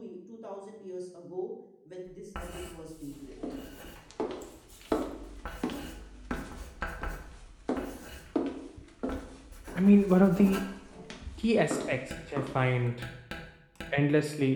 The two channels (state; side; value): identical; both; correlation 1.00